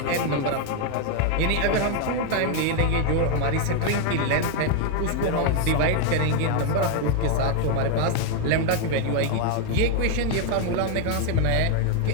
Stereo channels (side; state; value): both; different; correlation 0.01